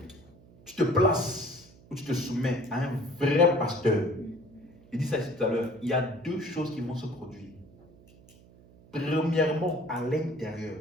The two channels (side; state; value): right; noise; hum, 25 dB below the sound